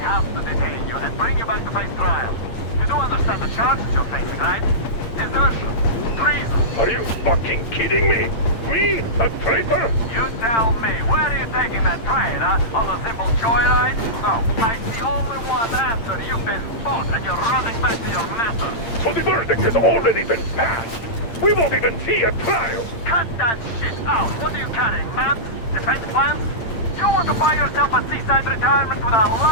to detain you and bring you back to face trial. You do understand the charges you're facing, right? Desertion. Treason. Are you fucking kidding me? Me? A traitor? You tell me, where are you taking that train, huh? On a simple joyride? No, I see only one answer. You've been fought and you're running back to your master. So the verdict has already been passed. We won't even see a trial. Cut that shit out. What are you carrying, man? Defense plans? You want to buy yourself a seaside retirement without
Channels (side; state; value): right; late; 8.8 ms